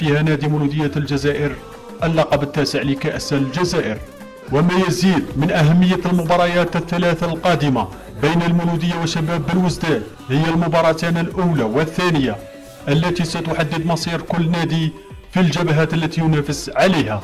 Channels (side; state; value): both; identical; correlation 1.00